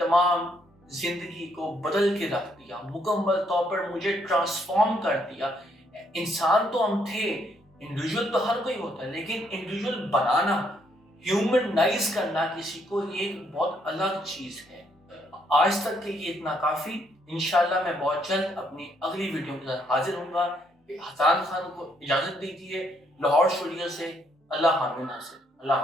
زندگی کو بدل کے رکھ دیا, مکمل طور پر مجھے ٹرانسفارم کر دیا. انسان تو ہم تھے, انڈیویجول تو ہر کوئی ہوتا ہے, لیکن انڈیویجول بنانا, ہیومنائز کرنا کسی کو, یہ ایک بہت الگ چیز ہے. آج تک کے لیے اتنا کافی. انشاءاللہ میں بہت جلد اپنی اگلی ویڈیو کے ساتھ حاضر ہوں گا. حسان خان کو اجازت دیجیے لاہور اسٹوڈیو سے. اللہ حافظ. اللہ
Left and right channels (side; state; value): both; normal; correlation 0.72